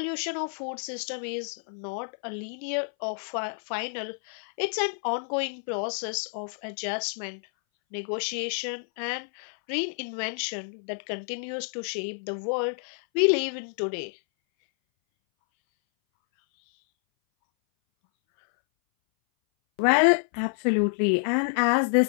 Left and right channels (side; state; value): right; silent; 59 dB below the other